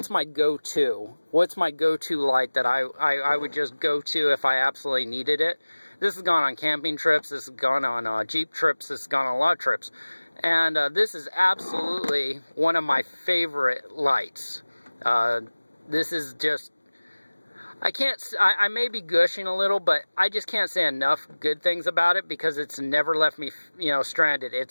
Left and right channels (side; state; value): both; inverted; correlation -1.00